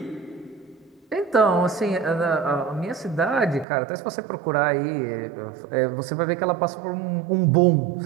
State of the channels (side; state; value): left; drops out; at 3.7 s